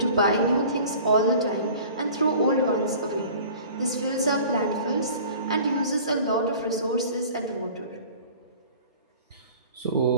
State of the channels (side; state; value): both; inverted; correlation -0.45